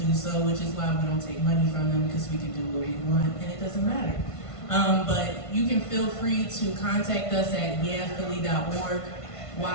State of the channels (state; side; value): late; right; 1.5 ms